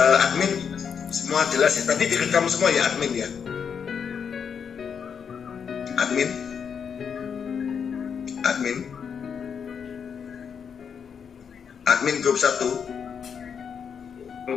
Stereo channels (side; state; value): right; quieter; 6.9 dB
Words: admin semua jelas ya. Tadi direkam semua ya admin ya. Admin grup 1,